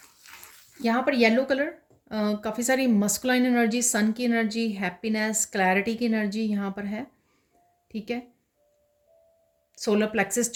यहाँ पर येलो कलर, काफ़ी सारी मस्कुलाइन एनर्जी, सन की एनर्जी, हैप्पीनेस, क्लैरिटी की एनर्जी यहाँ पर है, ठीक है। सोलर प्लेक्सिस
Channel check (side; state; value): both; identical; correlation 1.00